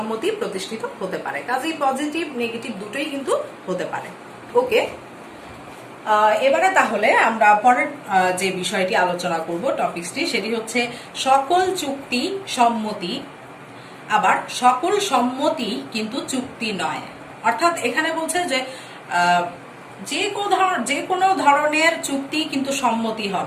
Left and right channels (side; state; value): both; identical; correlation 1.00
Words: প্রতিষ্ঠিত হতে পারে। কাজেই পজিটিভ নেগেটিভ দুটোই কিন্তু হতে পারে। ওকে, এবারে তাহলে আমরা পরের যে বিষয়টি আলোচনা করব, টপিকসটি, সেটি হচ্ছে সকল চুক্তি সম্মতি, আবার সকল সম্মতি কিন্তু চুক্তি নয়। অর্থাৎ এখানে বলছে যে যে কোনো ধরনের চুক্তি কিন্তু সম্মতি